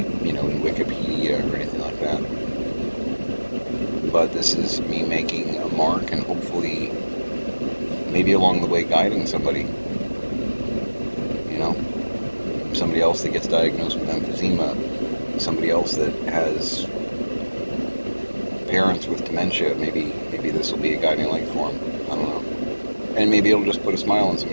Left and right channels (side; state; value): both; inverted; correlation -1.00